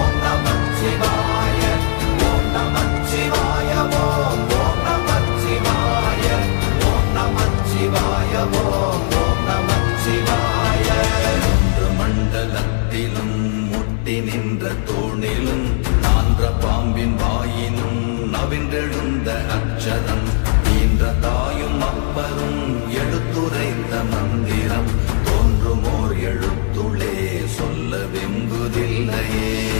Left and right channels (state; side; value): silent; right; 61 dB below the other